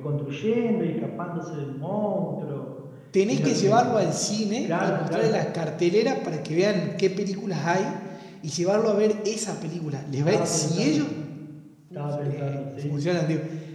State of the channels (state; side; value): identical; both; correlation 1.00